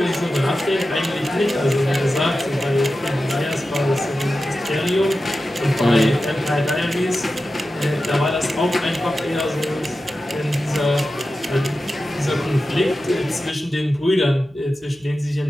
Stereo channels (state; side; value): noise; right; hum, 29 dB below the sound